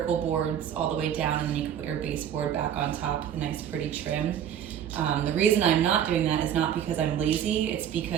boards all the way down, and then you can put your baseboard back on top with a nice pretty trim. The reason I'm not doing that is not because I'm lazy, it's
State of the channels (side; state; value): left; quieter; 9.6 dB